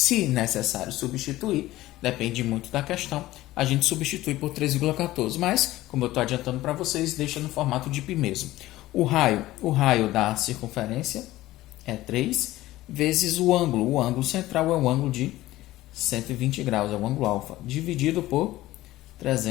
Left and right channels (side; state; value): right; quieter; 16.5 dB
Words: necessário substituir, depende muito da questão, a gente substitui por 3,14. Mas, como eu estou adiantando para vocês, deixa no formato de π mesmo. O raio da circunferência é 3 vezes o ângulo. O ângulo central é o ângulo de 120 graus, é o ângulo alfa, dividido por